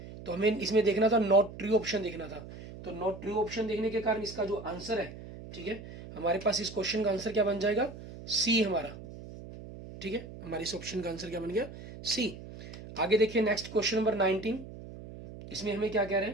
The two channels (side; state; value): right; noise; hum, 14 dB below the sound